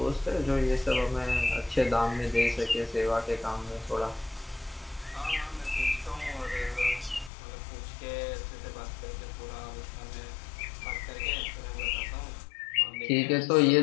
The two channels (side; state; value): right; drops out; at 7.3 s